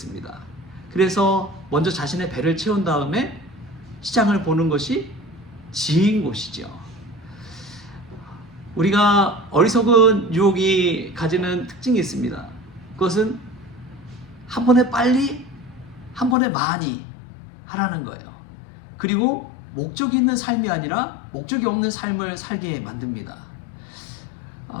그래서 먼저 자신의 배를 채운 다음에 시장을 보는 것이 지혜인 것이죠. 우리가 어리석은 유혹이 가지는 특징이 있습니다. 그것은 한 번에 빨리, 한 번에 많이 하라는 거예요. 그리고 목적이 있는 삶이 아니라 목적이 없는 삶을 살게 만듭니다.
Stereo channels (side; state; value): right; drops out; at 16.4 s